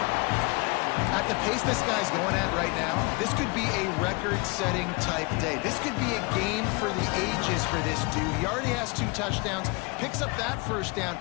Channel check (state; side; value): quieter; right; 27.7 dB